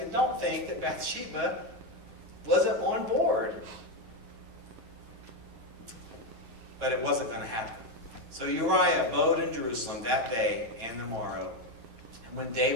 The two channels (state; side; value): late; left; 9.0 ms